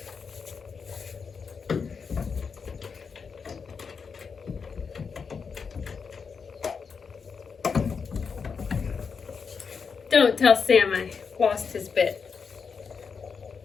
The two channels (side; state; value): right; quieter; 5.7 dB